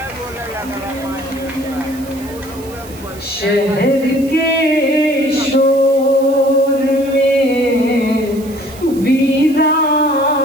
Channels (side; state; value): right; noise; hiss, 19 dB below the sound